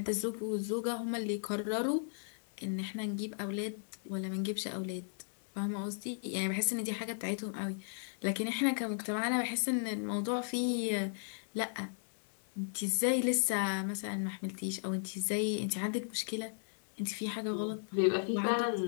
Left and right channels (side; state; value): right; silent; digital silence